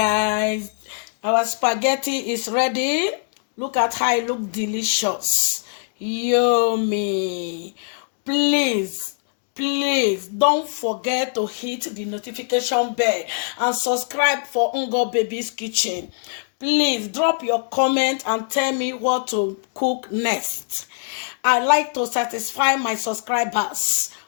our spaghetti is ready. Look at how it looks delicious. Yummy. Please don't forget to hit the notification bell and subscribe for Ngo Baby's Kitchen. Please drop your comment and tell me what to cook next. I like to satisfy my subscribers.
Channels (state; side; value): silent; right; digital silence